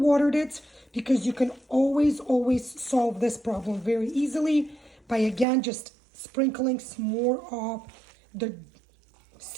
it, because you can always solve this problem very easily by, again, just sprinkling some more of the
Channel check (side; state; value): left; drops out; at 5.5 s